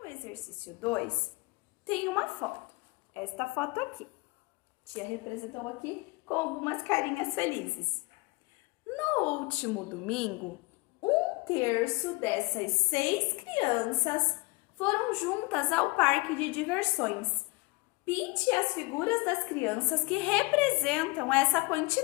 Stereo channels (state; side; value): quieter; right; 25.5 dB